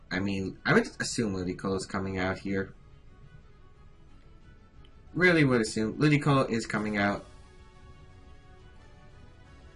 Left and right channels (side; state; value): both; identical; correlation 1.00